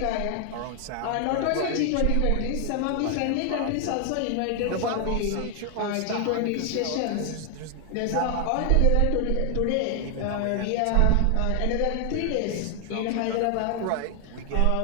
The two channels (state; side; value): different; both; correlation 0.00